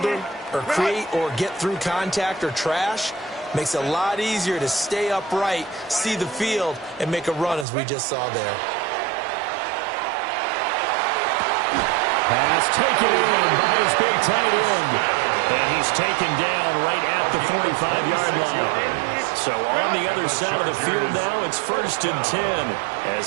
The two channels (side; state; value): left; drops out; at 7.7 s